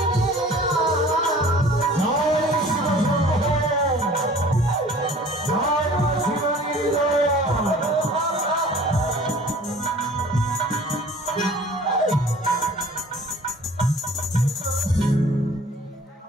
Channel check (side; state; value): both; normal; correlation 0.48